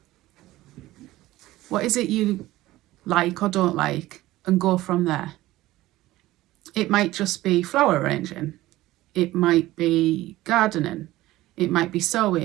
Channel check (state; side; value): quieter; left; 16.8 dB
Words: What is it you like or don't like? And go from there. It might just be flower arranging. It might be gardening. It might be